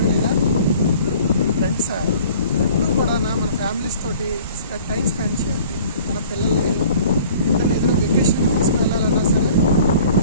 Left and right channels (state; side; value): inverted; both; correlation -0.49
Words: లేదా? ఫ్రెండ్సా ఎప్పుడు కూడా మన ఫ్యామిలీస్ తోటి టైం స్పెండ్ చేయాలి. మన పిల్లల్ని ఏదైనా వెకేషన్ తీసుకెళ్ళాలన్నా సరే